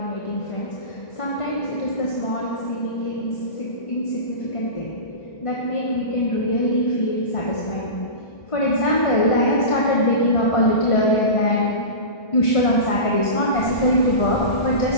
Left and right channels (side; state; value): right; late; 1.5 ms